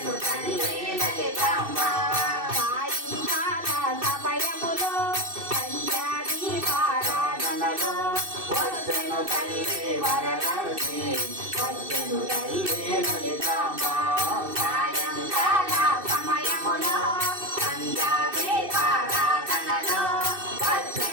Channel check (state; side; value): late; left; 2.6 ms